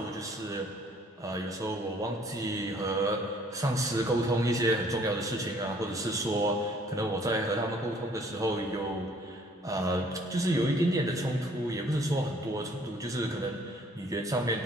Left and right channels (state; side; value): normal; both; correlation 0.59